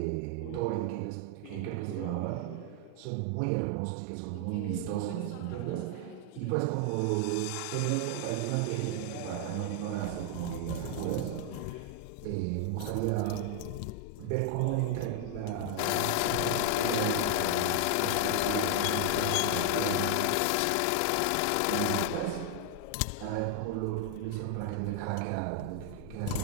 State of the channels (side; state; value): both; different; correlation 0.00